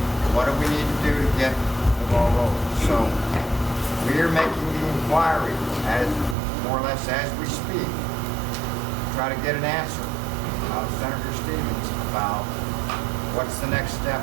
What do we need to do to get the ball rolling? So we are making the inquiry, as more or less as we speak, try to get an answer out of Senator Stevens about what's the next step,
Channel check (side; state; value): left; drops out; at 6.4 s